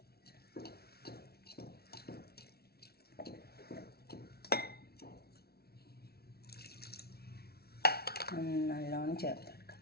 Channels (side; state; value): right; late; 0.45 ms